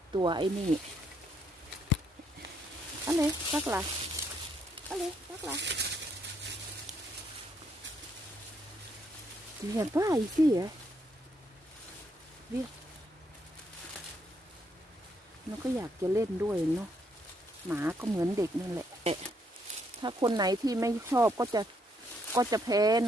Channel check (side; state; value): both; normal; correlation 0.73